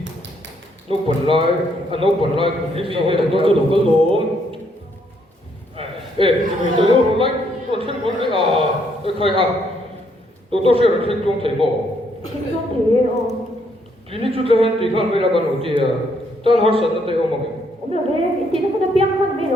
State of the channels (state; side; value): normal; both; correlation 0.72